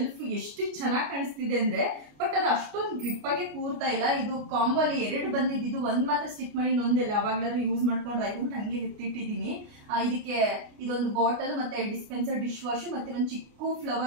ಎಷ್ಟು ಚೆನ್ನಾಗಿ ಕಾಣಿಸ್ತಿದೆ ಅಂದ್ರೆ, ಬಟ್ ಅದು ಅಷ್ಟೊಂದು ಗ್ರಿಪ್ ಆಗಿ ಕೂರ್ತಾ ಇಲ್ಲ. ಇದು ಕಾಂಬೋ ಅಲ್ಲಿ 2 ಬಂದಿದ್ದು, ಒಂದ್ ಮಾತ್ರ ಸ್ಟಿಕ್ ಮಾಡಿ ಇನ್ನೊಂದೆಲ್ಲ ಯಾವಾಗ್ಲಾದ್ರೂ ಯೂಸ್ ಮಾಡ್ಕೊಂಡು ಆಯ್ತು ಹಂಗೆ ಎತ್ತಿಟ್ಟಿದೀನಿ. ಇದಕ್ಕೆ ಇದೊಂದು ಬಾಟಲ್ ಮತ್ತೆ ಡಿಸ್ಪೆನ್ಸರ್, ಡಿಶ್ ವಾಶ್ ಮತ್ತೆ ಒಂದು ಚಿಕ್ಕ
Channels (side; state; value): left; late; 29 ms